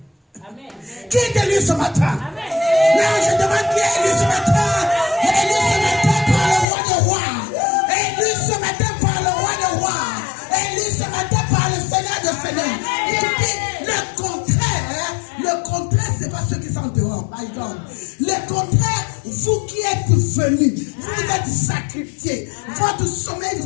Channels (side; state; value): right; drops out; at 6.7 s